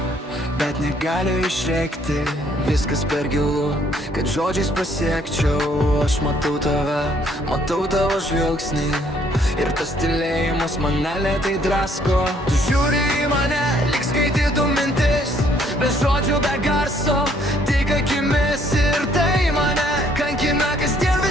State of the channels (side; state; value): both; normal; correlation 0.65